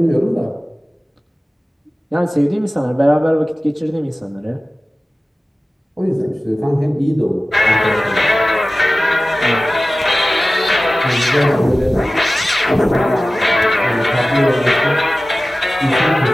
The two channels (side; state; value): both; normal; correlation 0.96